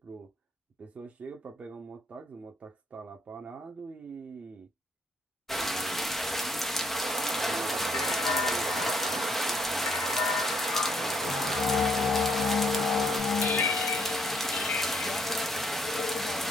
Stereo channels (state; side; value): normal; both; correlation 0.70